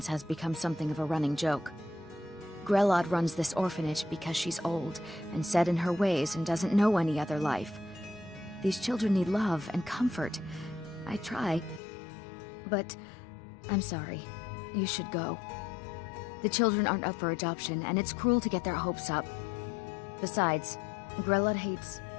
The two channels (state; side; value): drops out; right; at 11.8 s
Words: has become something of a running joke. Grelod runs this orphanage because she's old and set in her ways and doesn't know any other life. These children need love and comfort. I try. But I'm sorry. You should go. The children aren't up for adoption, and it's cruel to get their hopes up. Besides, Grelod hates